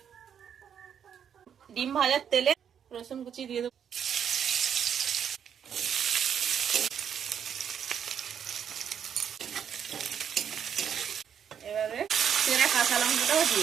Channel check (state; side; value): quieter; left; 8.4 dB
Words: ডিম ভাজার তেলে রসুন কুচি দিয়ে দেবো। এবারে চেরা কাঁচা লঙ্কাটাও